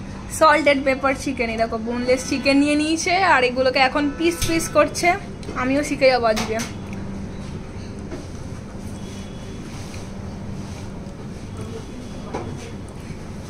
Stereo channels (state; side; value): identical; both; correlation 1.00